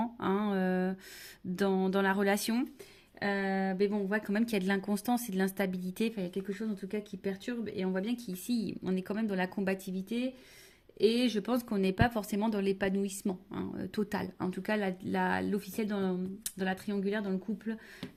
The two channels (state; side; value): identical; both; correlation 1.00